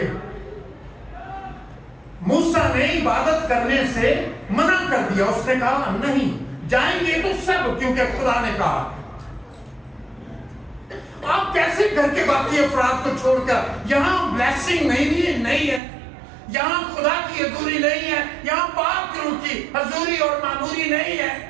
मूसा ने इबादत करने से मना कर दिया, उसने कहा नहीं जाएंगे तो सब, क्योंकि खुदा ने कहा। आप कैसे घर के बाकी अफराद को छोड़कर यहां ब्लेसिंग नहीं है, यहां खुदा की हजूरी नहीं है, यहां पाक रूह की हजूरी और मामूरी नहीं है,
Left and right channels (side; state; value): left; drops out; at 15.8 s